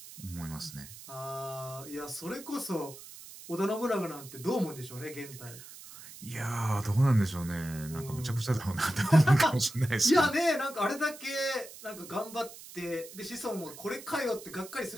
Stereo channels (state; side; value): noise; right; hiss, 16 dB below the sound